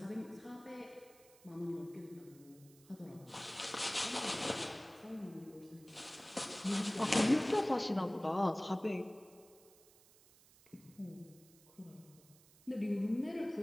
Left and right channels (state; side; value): noise; right; hiss, 25 dB below the sound